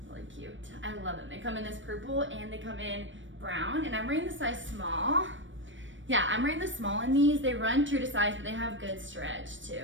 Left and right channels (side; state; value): left; late; 0.56 ms